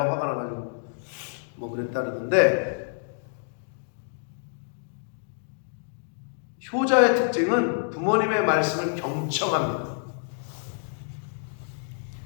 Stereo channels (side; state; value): right; silent; digital silence